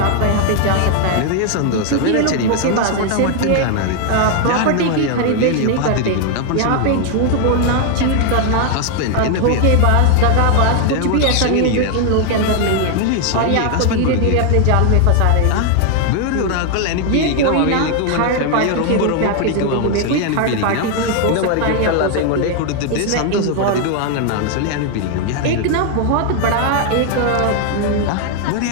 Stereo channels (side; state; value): both; different; correlation 0.00